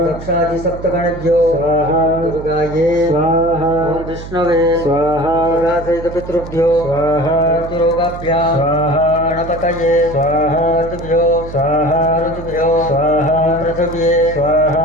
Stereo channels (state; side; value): noise; right; hum, 12 dB below the sound